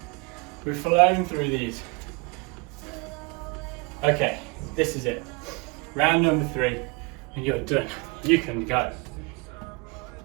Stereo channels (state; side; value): quieter; left; 29.1 dB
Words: We've flown through these. Okay, this is it. Round number 3, and you're done. You can go.